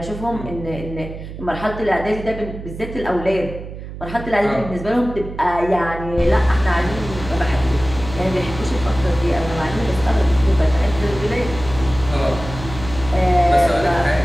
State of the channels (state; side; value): noise; right; hum, 11 dB below the sound